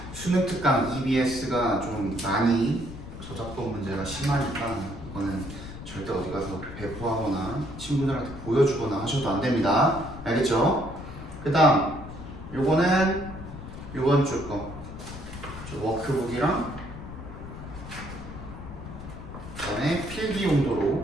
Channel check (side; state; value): left; noise; rumble, 11 dB below the sound